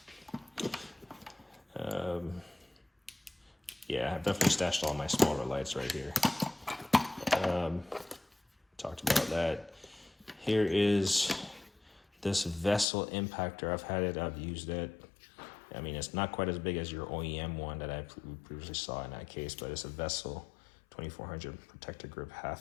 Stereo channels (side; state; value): right; drops out; at 12.9 s